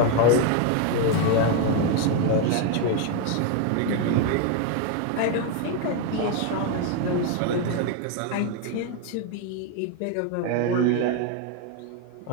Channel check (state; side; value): different; both; correlation 0.01